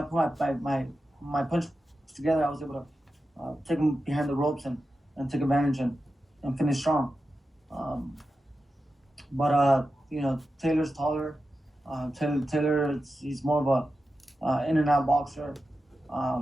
my punch together, I was able to take him behind the ropes and take advantage and finish strong. But Taylor's taller. Taylor, he's more of a in and out boxer.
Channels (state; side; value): normal; both; correlation 0.91